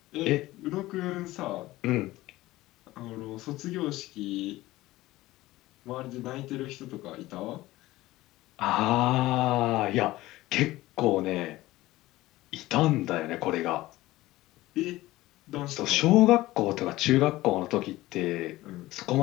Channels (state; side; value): quieter; right; 17.6 dB